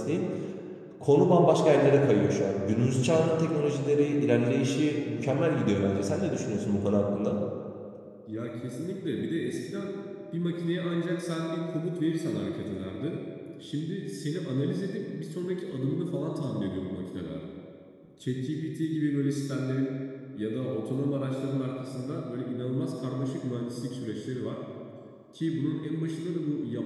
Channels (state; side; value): identical; both; correlation 1.00